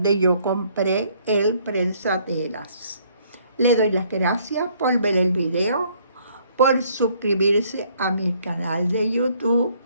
yo compré el prensatelas. Le doy las gracias por ver el video, por suscribirse a mi canal de YouTube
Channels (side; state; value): both; inverted; correlation -0.65